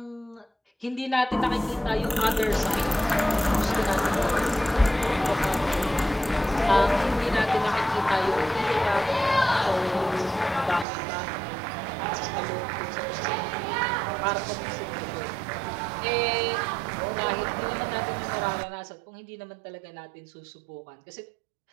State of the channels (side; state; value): left; drops out; at 10.9 s